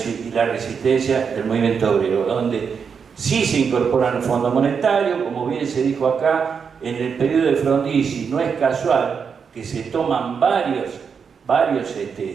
del movimiento obrero, donde sí se incorporan al Fondo Monetario, como bien se dijo acá, en el periodo de Frondizi no es casual que se toman varios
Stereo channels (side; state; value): left; quieter; 6.3 dB